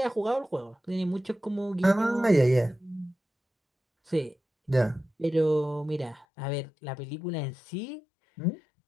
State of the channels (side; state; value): right; drops out; at 6.2 s